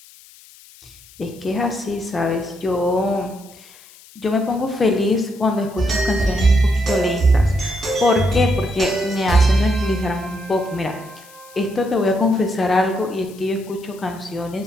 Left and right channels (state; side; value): noise; left; hiss, 23 dB below the sound